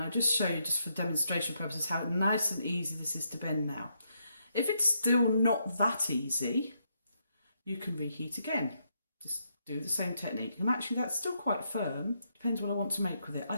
just show you, just for demonstration purposes, how nice and easy this is to bend now. If it's still not that easy, you can reheat again. Just do the same technique. And actually that's still quite firm. Depends what I want to make with it. I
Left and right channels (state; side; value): inverted; both; correlation -0.77